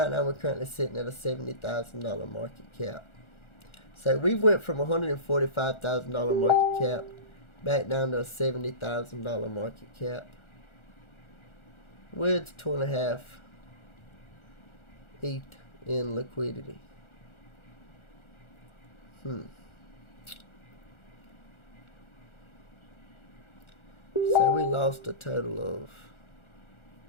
now we're currently sitting at a $70,000 market cap. So we went from $145,000 market cap back down to a $70,000 market cap with 2.5 ETH in liquidity. So we lost a total of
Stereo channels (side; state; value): right; late; 1.4 ms